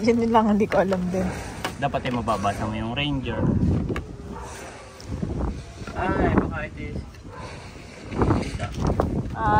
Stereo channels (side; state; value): both; identical; correlation 1.00